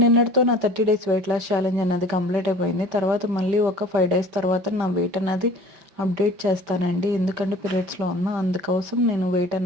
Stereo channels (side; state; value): left; late; 5.1 ms